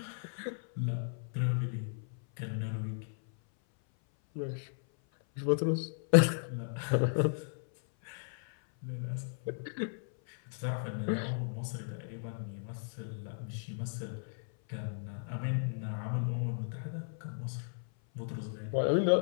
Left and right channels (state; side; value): silent; right; 54 dB below the other